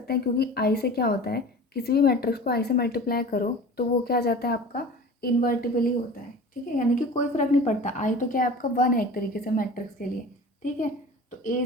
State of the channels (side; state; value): both; normal; correlation 0.39